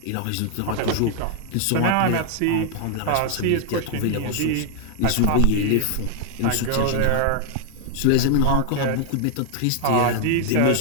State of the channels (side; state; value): both; different; correlation 0.00